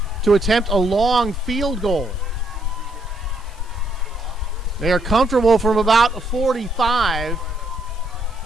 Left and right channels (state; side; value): normal; both; correlation 0.73